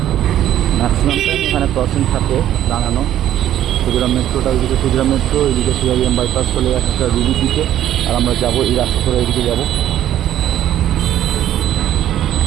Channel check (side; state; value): left; quieter; 11.9 dB